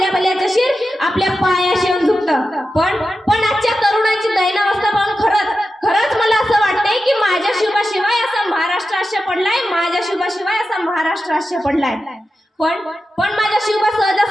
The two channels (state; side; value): normal; both; correlation 0.91